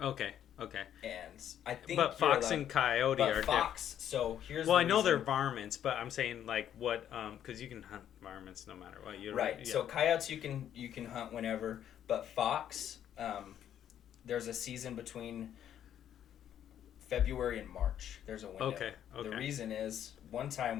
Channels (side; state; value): right; quieter; 10.2 dB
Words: Okay. And I think. But fox and coyote are fox. So here's. Well, I know they're varmints, but I'm saying like what? Because you can hunt varmints no matter what. Right. Yeah. So coyotes you can hunt whenever, but fox, there's a season between February and March. There's a window. Okay. The reason is one